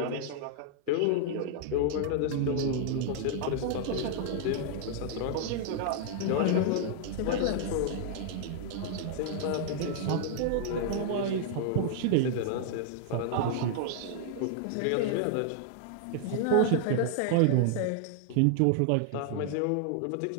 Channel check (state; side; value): different; both; correlation -0.01